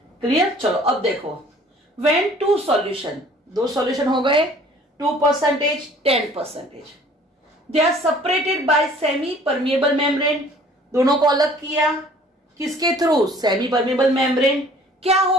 क्लियर? चलो अब देखो, व्हेन टू सॉल्यूशन, दो सॉल्यूशन हो गए, 2%, 10%, they are separated by semi permeable membrane, दोनों को अलग किया, किसके थ्रू? Semi permeable membrane. क्या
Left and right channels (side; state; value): both; normal; correlation 0.53